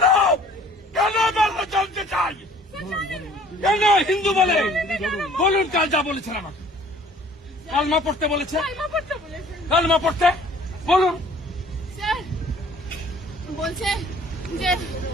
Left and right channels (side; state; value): both; normal; correlation 0.54